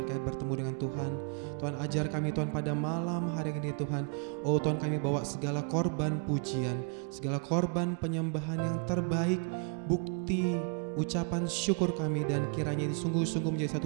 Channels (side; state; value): left; quieter; 38.7 dB